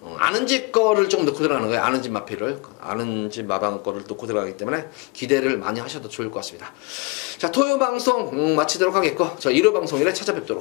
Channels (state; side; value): quieter; right; 27.6 dB